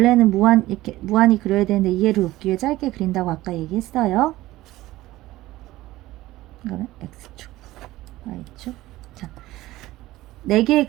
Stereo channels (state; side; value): quieter; left; 16.9 dB